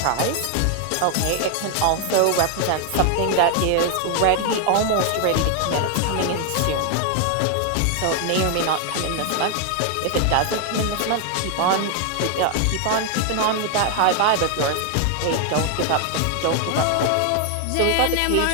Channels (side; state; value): both; different; correlation 0.00